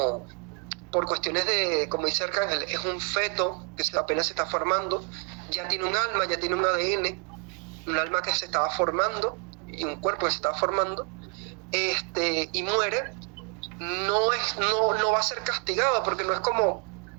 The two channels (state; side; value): quieter; left; 38.6 dB